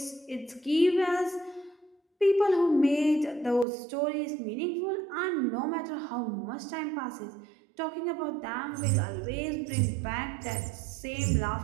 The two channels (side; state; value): left; drops out; at 3.7 s